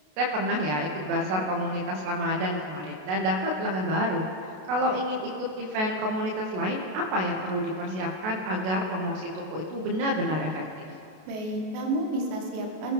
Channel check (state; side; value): late; left; 32 ms